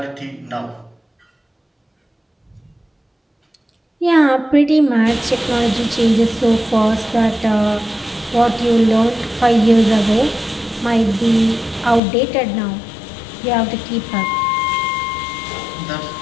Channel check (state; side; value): drops out; right; at 12.0 s